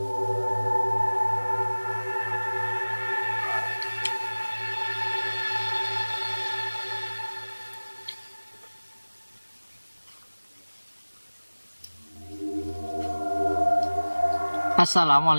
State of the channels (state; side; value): inverted; both; correlation -1.00